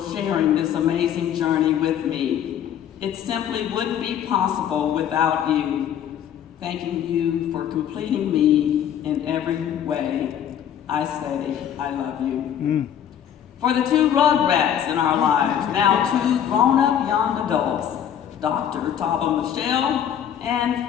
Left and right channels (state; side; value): quieter; right; 9.6 dB